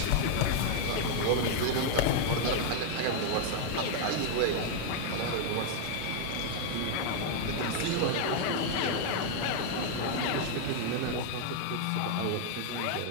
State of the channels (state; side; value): different; both; correlation 0.00